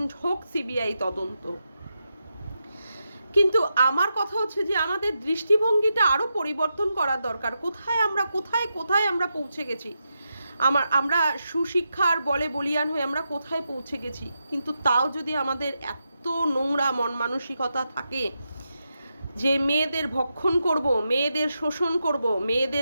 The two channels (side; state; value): both; inverted; correlation -0.87